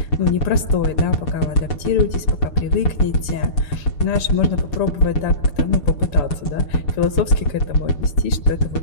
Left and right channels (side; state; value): right; late; 6.9 ms